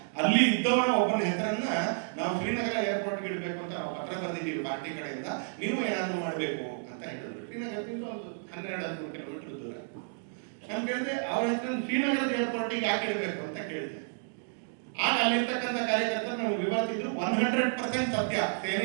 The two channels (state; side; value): silent; left; digital silence